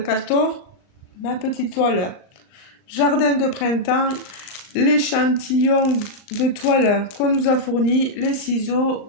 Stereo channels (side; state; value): right; late; 39 ms